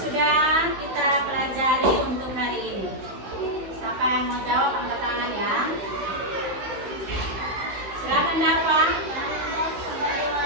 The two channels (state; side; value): late; left; 16 ms